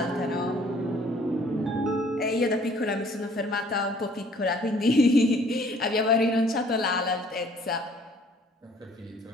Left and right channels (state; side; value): normal; both; correlation 0.57